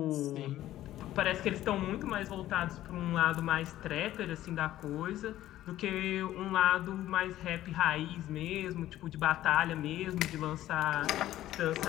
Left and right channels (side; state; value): right; quieter; 13.8 dB